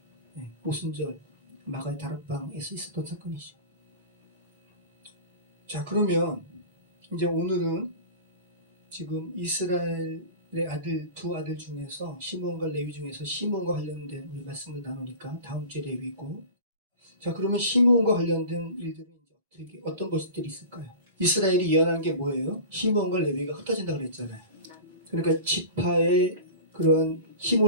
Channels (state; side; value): inverted; both; correlation -0.35